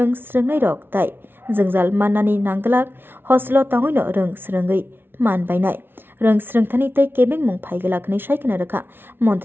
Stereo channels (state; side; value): late; left; 0.11 ms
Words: Sringai Rok Tai Jengzal Manani Nanglak Hostelo Tangoino Rong Sringai Man Bainai Rong Sringthani Tei Kebeng Mung Phaigalak ni Shaikana Rakha